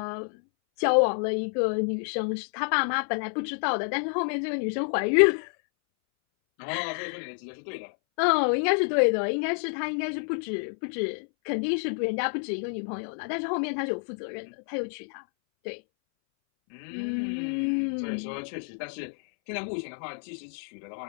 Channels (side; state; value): right; silent; 59 dB below the other